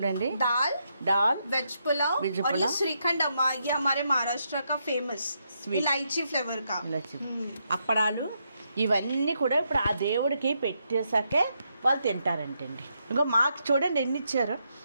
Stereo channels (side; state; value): both; inverted; correlation -0.80